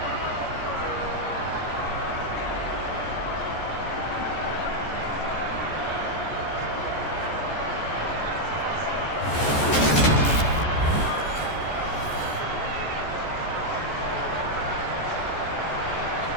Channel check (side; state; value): right; late; 14 ms